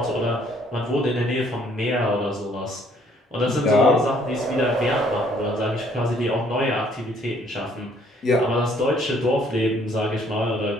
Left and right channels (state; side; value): normal; both; correlation 0.63